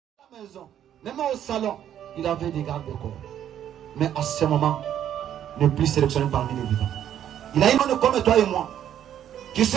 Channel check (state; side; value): quieter; left; 10.4 dB